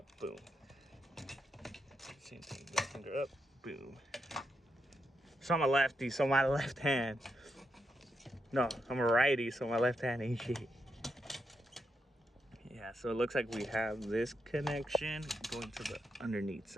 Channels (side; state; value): both; normal; correlation 0.82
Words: boom. Same thing, middle finger up, boom. So I'm a lefty, so my left hand. No, I'm a righty, so my left hand ain't shit. Yeah, so it looks like we have this connection going to the underneath